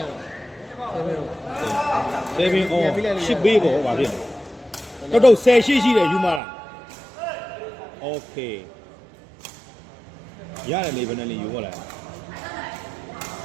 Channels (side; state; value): left; drops out; at 6.4 s